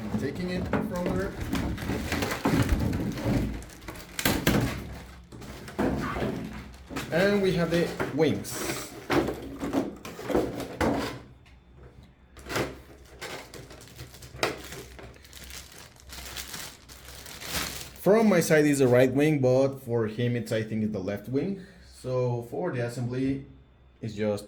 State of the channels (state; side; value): identical; both; correlation 1.00